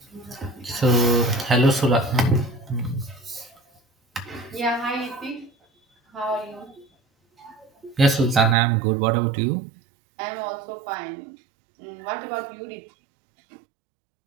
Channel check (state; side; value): drops out; left; at 8.6 s